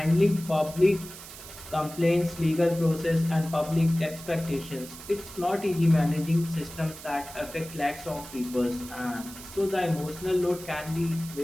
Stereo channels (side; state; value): right; noise; hiss, 15 dB below the sound